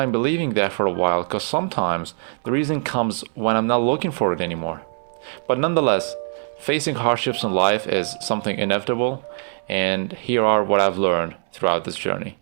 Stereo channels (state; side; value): silent; left; 64 dB below the other